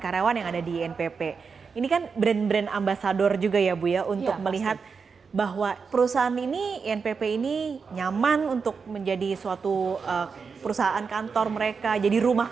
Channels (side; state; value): left; quieter; 5.4 dB